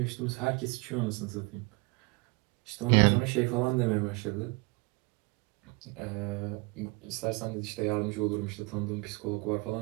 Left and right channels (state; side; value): quieter; left; 28.1 dB